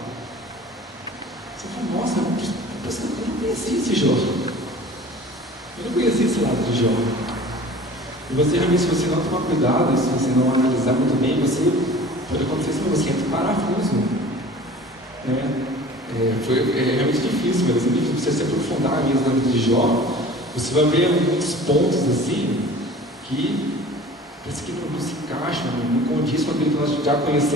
você fala, nossa, eu não conhecia esse Jó, eu não conhecia esse lado de Jó. E você realmente, se você não tomar cuidado, se você não analisar muito bem, você pode acontecer isso, você entra em parafuso, né? Foi realmente difícil, mas é difícil você se aprofundar mesmo na vida de Jó. Você vai ver muitos pontos assim que parece que não se encaixam, não condiz com aquilo que nós já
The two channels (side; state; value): both; normal; correlation 0.43